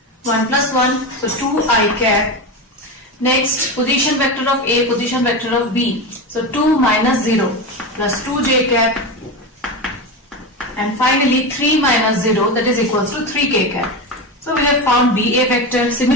1 plus 1, so 2i cap. Next, position vector of A, position vector of B, so 2 minus 0 plus 2j cap. And finally 3 minus 0, that is equals to 3k cap. So we have found BA vector.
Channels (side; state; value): both; normal; correlation 0.20